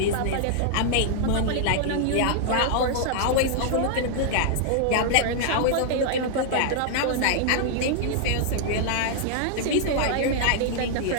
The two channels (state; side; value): different; both; correlation -0.01